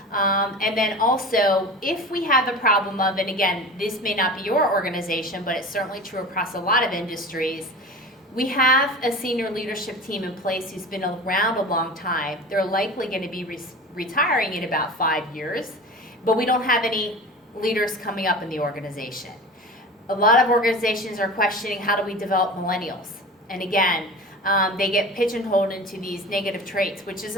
And then also, if we have a problem of, and again, this may not be your organization, but it's certainly true across a lot of industries, we have a senior leadership team in place who's been around a long time. They're likely going to be retiring in about 5 years, but we don't have any leaders coming up in the organization. A lot of organizations are questioning, how do we develop millennials? And again, they get pigeonholed into these negative traits, which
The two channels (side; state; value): both; normal; correlation 0.34